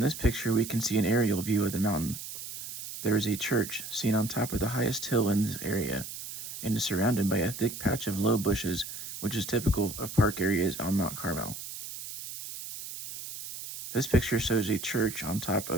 picture, we can see an aerial view of the mountain. There is a church seen on top of the highest hill in this area, and is surrounded by a thick patch of low bushes, which is typical of park areas on Mount Carmel. This picture shows a church on top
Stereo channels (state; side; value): noise; right; hiss, 10 dB below the sound